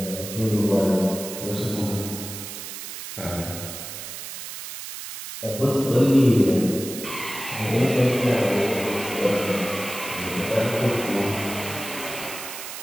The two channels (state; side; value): noise; right; hiss, 9 dB below the sound